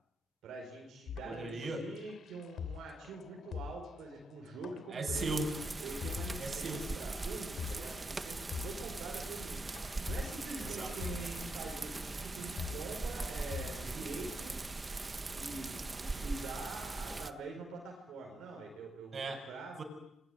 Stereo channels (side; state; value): both; normal; correlation 0.82